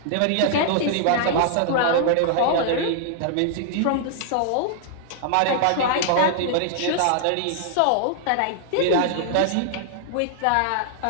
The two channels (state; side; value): different; both; correlation -0.01